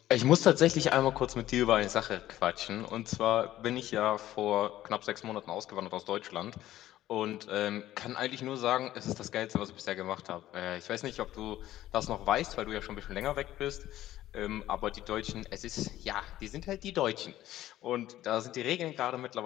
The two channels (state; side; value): quieter; right; 13.9 dB